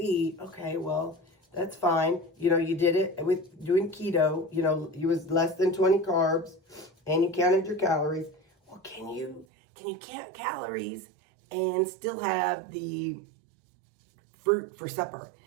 okay, well, that's fine. You know, you did it with doing keto, you know, it was less than 20 carbs and you counted your calories. Well, can you count calories and still have the fruit for supper,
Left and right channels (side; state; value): left; drops out; at 9.5 s